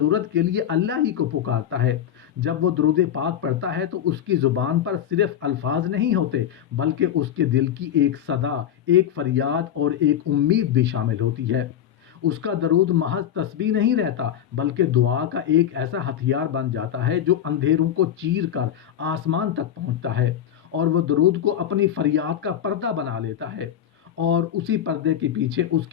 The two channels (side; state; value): right; quieter; 10.0 dB